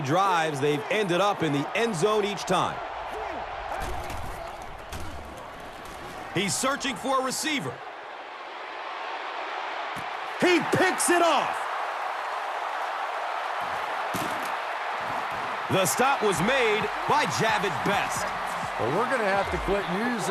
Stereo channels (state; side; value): identical; both; correlation 1.00